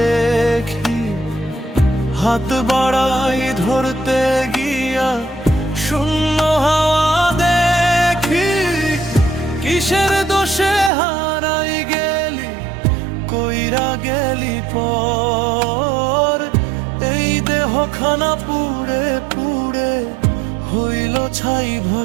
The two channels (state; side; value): drops out; left; at 10.9 s